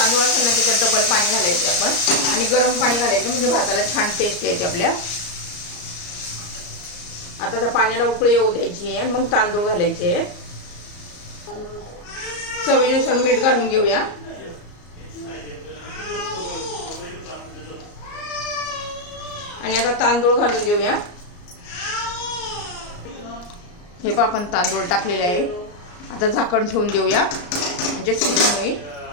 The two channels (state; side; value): late; right; 34 ms